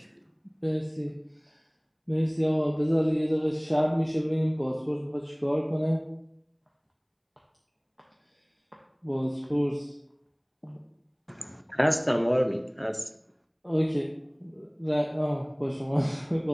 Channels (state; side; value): identical; both; correlation 1.00